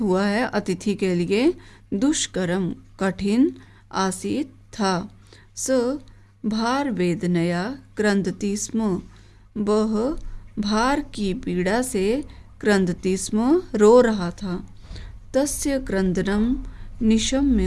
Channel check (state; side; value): identical; both; correlation 1.00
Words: हुआ है अतिथि के लिए, दुष्करम कठिन, आसीत था। स भार वेदनया क्रंदति स्म। वह भार की पीड़ा से क्रंदति स्म, रो रहा था। तस्य क्रंदनम